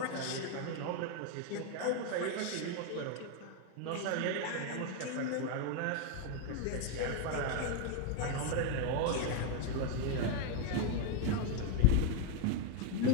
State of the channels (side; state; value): both; different; correlation 0.01